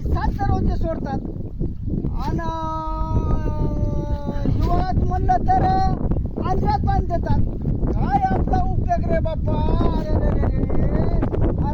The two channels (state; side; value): identical; both; correlation 1.00